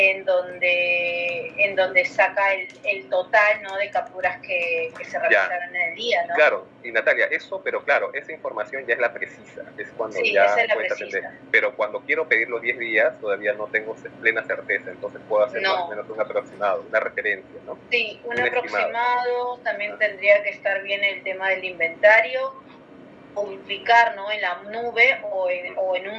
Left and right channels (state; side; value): identical; both; correlation 1.00